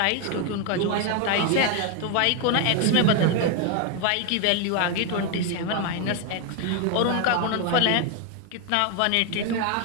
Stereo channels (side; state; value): both; different; correlation 0.01